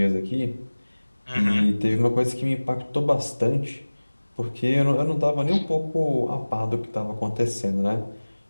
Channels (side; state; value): both; inverted; correlation -1.00